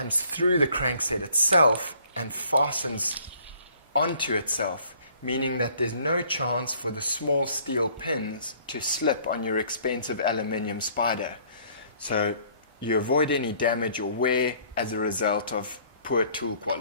through the crankset itself and fastens onto itself, meaning that there's no chance for the small steel pins to slip on your expensive aluminium spider. So you avoid any damage or wear as a result of poor tool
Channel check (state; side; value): inverted; both; correlation -0.59